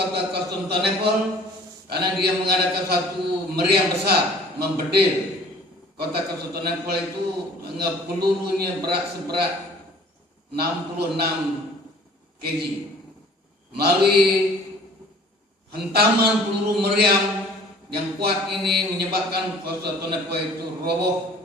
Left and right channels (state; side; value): normal; both; correlation 0.50